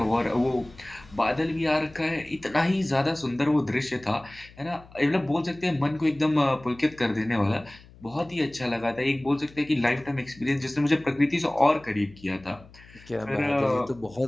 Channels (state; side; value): noise; left; hum, 23 dB below the sound